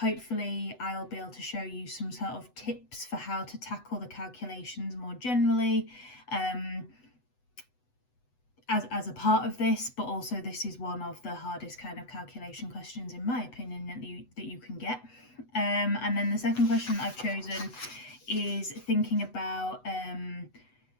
I'll be able to show you some sort of tips for how to tackle the calculations more generally as a part of this, but also this is one of the hardest kind of calculation questions in my opinion that you can get. And then the second question I've chosen is thinking about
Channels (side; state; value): right; late; 8.0 ms